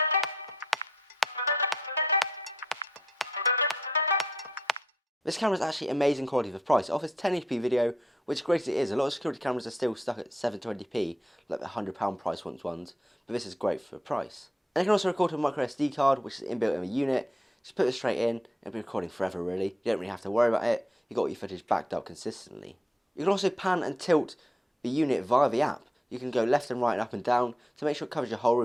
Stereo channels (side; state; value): both; normal; correlation 0.77